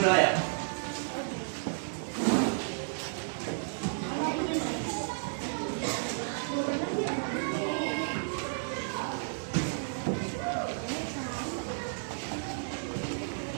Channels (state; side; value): silent; left; digital silence